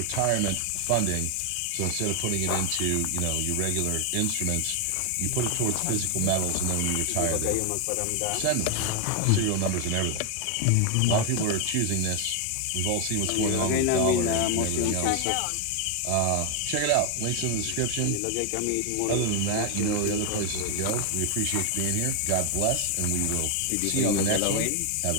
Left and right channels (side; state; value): both; different; correlation 0.01